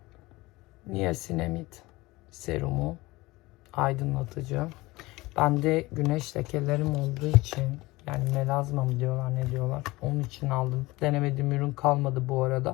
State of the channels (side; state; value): right; quieter; 20.9 dB